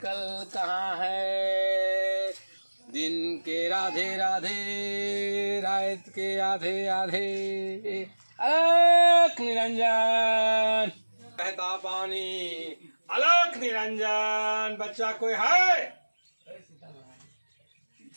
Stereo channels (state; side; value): inverted; both; correlation -1.00